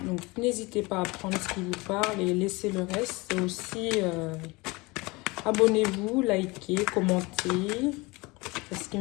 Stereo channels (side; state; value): right; quieter; 24.2 dB